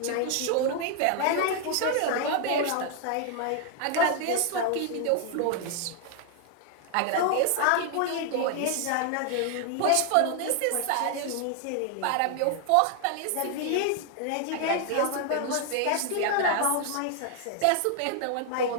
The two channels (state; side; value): different; both; correlation 0.00